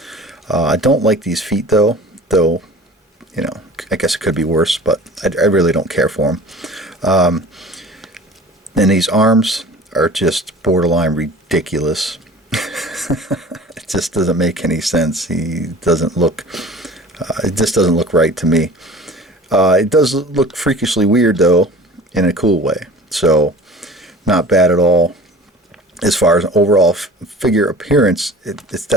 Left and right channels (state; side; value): normal; both; correlation 0.43